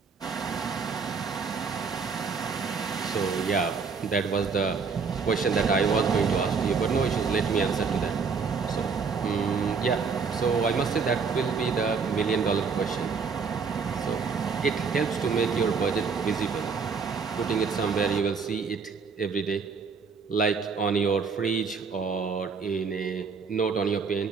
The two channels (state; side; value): quieter; left; 5.3 dB